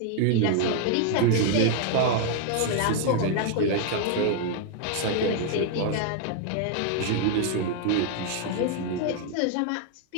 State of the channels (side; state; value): both; different; correlation 0.00